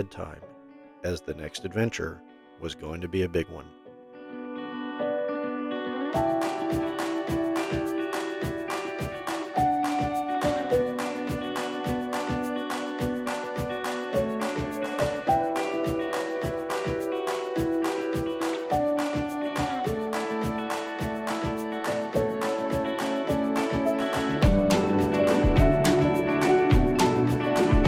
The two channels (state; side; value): identical; both; correlation 1.00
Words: as the next adventure was going to be a big one.